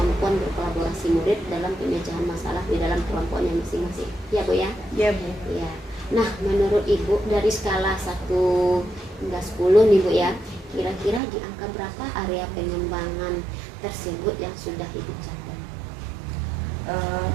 berkolaborasi murid dalam pemecahan masalah di dalam kelompoknya masing-masing. Ya Bu ya? Iya Bu. Ya. Nah, menurut Ibu dari skala 1 hingga 10 nih Bu ya, kira-kira di angka berapa area pengembangan tersebut yang sudah Ibu capai?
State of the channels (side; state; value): left; drops out; at 11.2 s